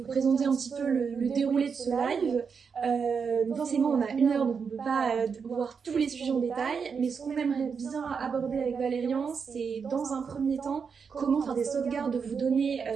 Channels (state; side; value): quieter; left; 6.0 dB